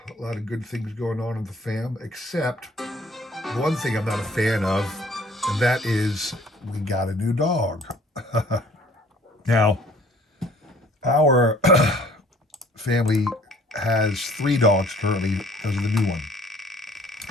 A lot of good things going on in the fam, except one thing I'm not a fan of, and that is we got a new dog. Now, our family has 3 dogs currently because of the new one.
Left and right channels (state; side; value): normal; both; correlation 0.55